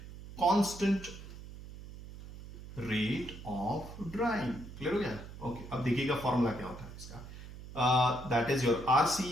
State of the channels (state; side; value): noise; right; hum, 14 dB below the sound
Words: constant rate of drawing. Clear हो गया? ओके, अब देखिएगा फॉर्मूला क्या होता है इसका। That is your